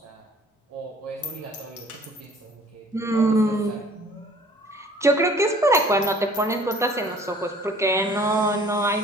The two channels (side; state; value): both; normal; correlation 0.53